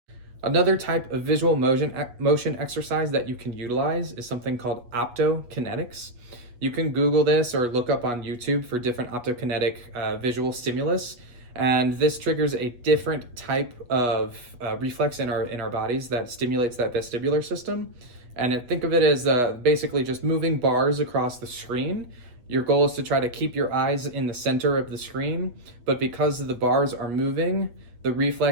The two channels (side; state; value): left; late; 8.3 ms